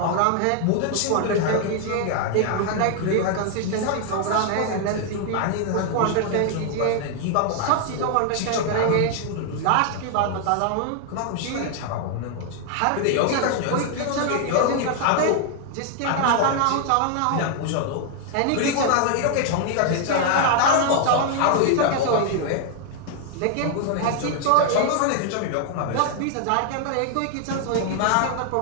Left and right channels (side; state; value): both; different; correlation 0.00